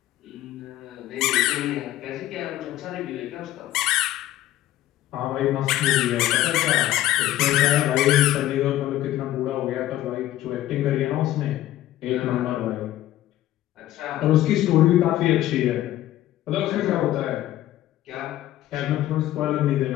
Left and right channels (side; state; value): right; quieter; 14.1 dB